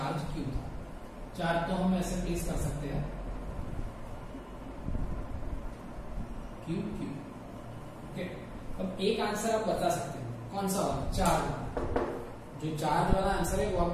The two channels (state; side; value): identical; both; correlation 1.00